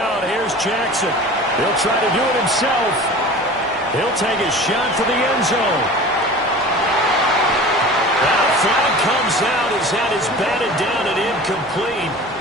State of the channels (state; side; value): normal; both; correlation 0.39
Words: here's Jackson. He'll try to do it himself. He'll take a shot for the end zone. That flag comes out as that is batted down and incomplete.